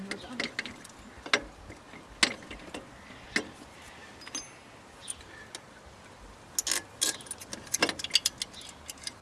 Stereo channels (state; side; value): identical; both; correlation 1.00